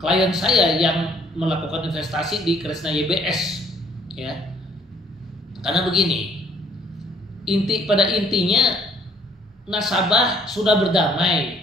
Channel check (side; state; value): both; normal; correlation 0.61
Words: klien saya yang melakukan investasi di Kresna YBS ya. Karena begini, pada intinya nasabah sudah